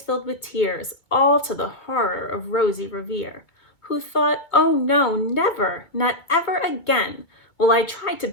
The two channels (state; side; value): late; right; 2.2 ms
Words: filled with tears, all to the horror of Rosie Revere, who thought, "Oh no, never, not ever again will I try to